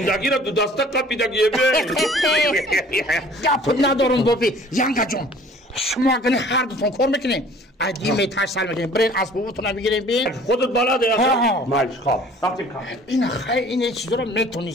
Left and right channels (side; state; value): both; normal; correlation 0.51